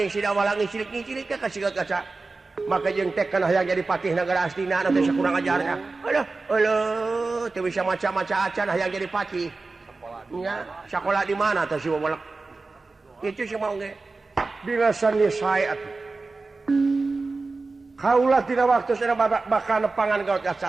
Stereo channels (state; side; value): quieter; left; 3.7 dB